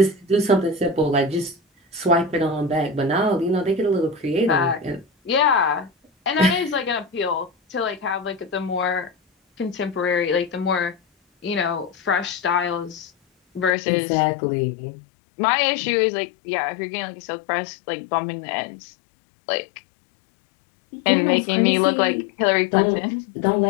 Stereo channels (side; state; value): right; drops out; at 13.8 s